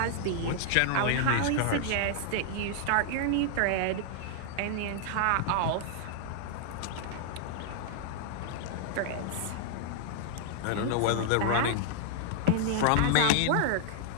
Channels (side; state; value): both; different; correlation -0.01